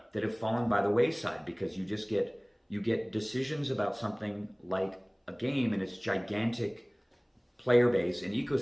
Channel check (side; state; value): both; identical; correlation 1.00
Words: that have fallen by the wayside because you get decisions about something like a game and its gigantic player base and